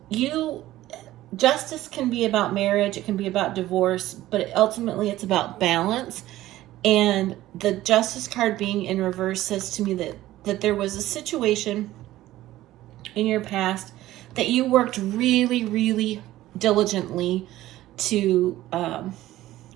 justice can be about marriage, it can be about divorce, but ultimately it's about balance. And the Justice card being in reverse says to me that there was a situation in your past that you worked really, really diligently to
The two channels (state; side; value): quieter; left; 15.3 dB